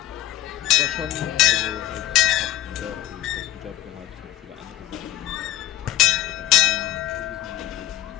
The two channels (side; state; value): right; quieter; 14.6 dB